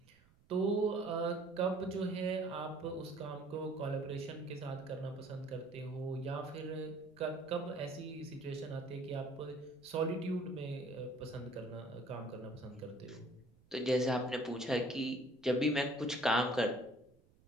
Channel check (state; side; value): noise; right; rumble, 30 dB below the sound